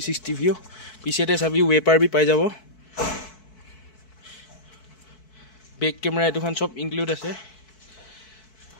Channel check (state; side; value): late; right; 4.6 ms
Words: ভিউ পিছেতে চাবি ওয়েপার বি পাই যাব বেক ক্যামেরা এটুখান সব ইনক্লুড আছে